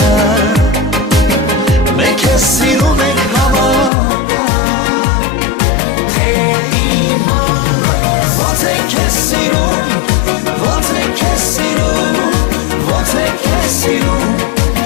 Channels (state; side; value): drops out; right; at 3.9 s